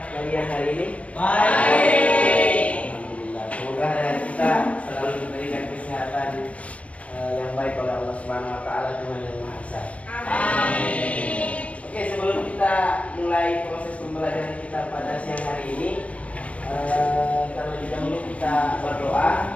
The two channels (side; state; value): right; late; 0.064 ms